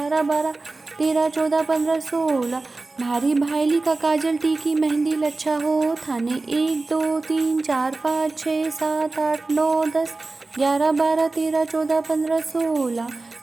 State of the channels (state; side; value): quieter; left; 3.4 dB